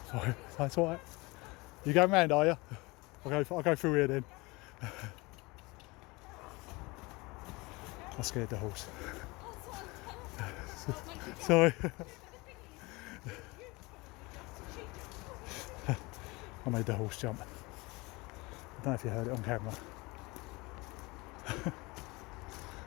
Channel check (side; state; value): right; quieter; 24.2 dB